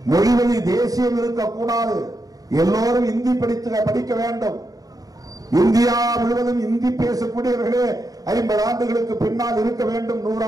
மொழிவழி தேசியம் இருக்கக்கூடாது, எல்லோரும் இந்தி படிக்க வேண்டும். இந்தியா முழுவதும் இந்தி பேசக்கூடியவர்களே 50 ஆண்டுகளுக்கு பின்னால் இருக்க வேண்டும், 100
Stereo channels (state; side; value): late; left; 0.18 ms